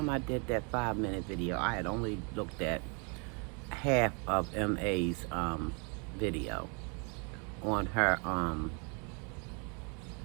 I did that 5-minute video, I had only looked at half of MA's video on her, on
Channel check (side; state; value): left; quieter; 35.3 dB